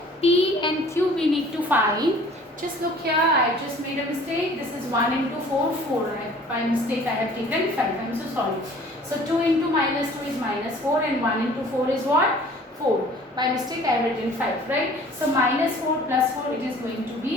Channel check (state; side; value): normal; both; correlation 0.50